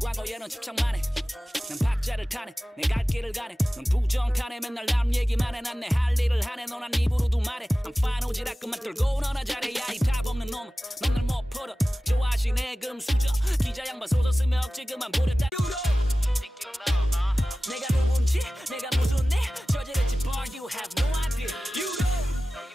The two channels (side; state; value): both; normal; correlation 0.96